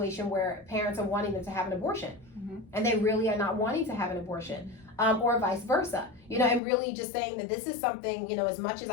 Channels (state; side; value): drops out; right; at 6.6 s